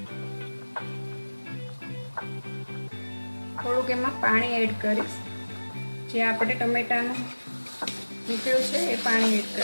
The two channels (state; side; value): inverted; both; correlation -1.00